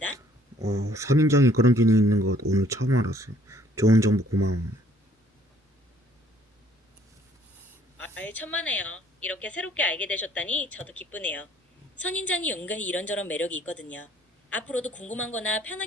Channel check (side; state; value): both; normal; correlation 0.61